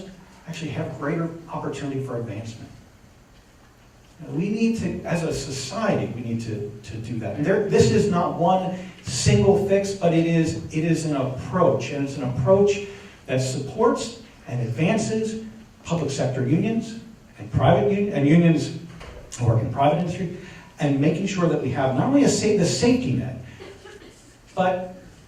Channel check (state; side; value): identical; both; correlation 1.00